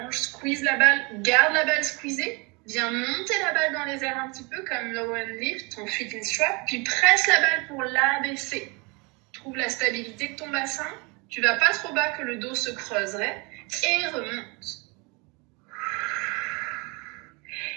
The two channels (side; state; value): left; quieter; 28.9 dB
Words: Squeeze la balle. Garde la balle squeezée. Viens monter la balle dans les airs un petit peu comme low and lift, ton feet in strap. Puis presse la balle pour l'abaisser. Trouve la stabilité de ton bassin. Tu vas pas trop bas que le dos se creuserait. Et remonte.